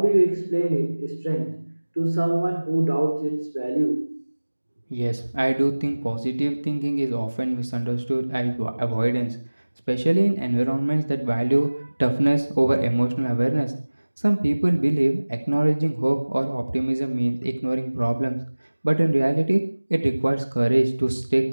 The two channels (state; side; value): inverted; both; correlation -1.00